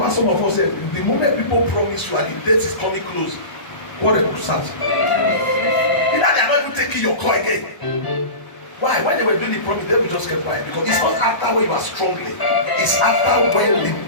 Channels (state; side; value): late; right; 1.0 ms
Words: some of us say the moment people promise you and the date is coming close, quarrel will start. Either they are not even taking your call again. Why? When they were doing the promise, they will just keep quiet because it's not after when you are strongly, it's after when the